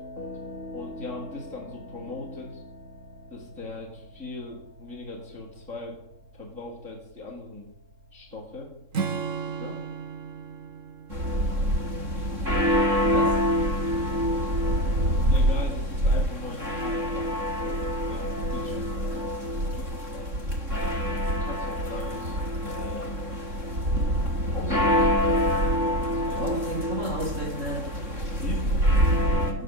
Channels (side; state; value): left; late; 3.6 ms